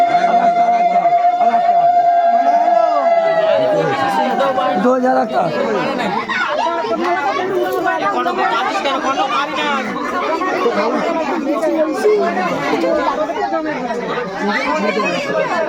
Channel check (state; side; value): identical; both; correlation 1.00